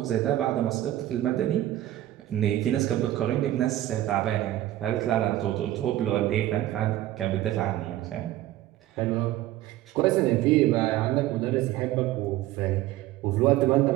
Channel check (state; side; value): quieter; left; 14.5 dB